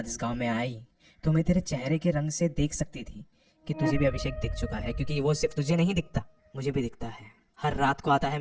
इस गांव में आई तो मैं तेरे चेहरे के रंग से देख सकती थी कि तुझे भी अभिषेक दिख चुका है, क्योंकि वो सिर्फ तुझे नहीं दिखता, मुझे भी दिखता है। हर रात को आता है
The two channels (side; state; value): both; identical; correlation 1.00